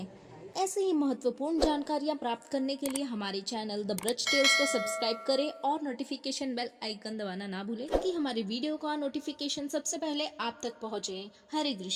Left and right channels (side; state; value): both; identical; correlation 1.00